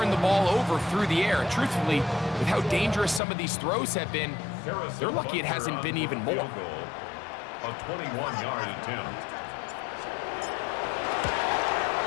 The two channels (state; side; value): drops out; right; at 3.2 s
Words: the ball over through the air. And truthfully, with how dangerous some of these throws have been, they're lucky it hasn't been even more. A 21-yard attempt.